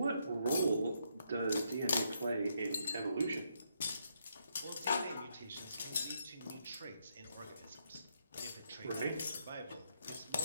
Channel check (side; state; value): both; inverted; correlation -0.76